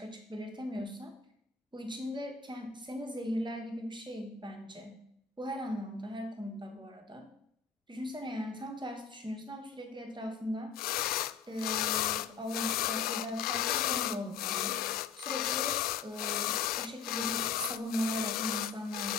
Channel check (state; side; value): quieter; right; 5.7 dB